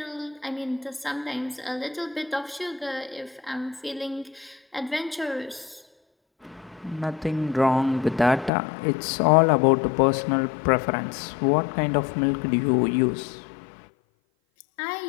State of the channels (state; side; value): drops out; right; at 8.5 s